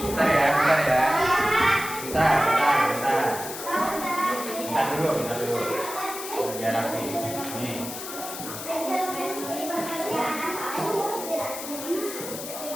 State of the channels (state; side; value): noise; left; hiss, 9 dB below the sound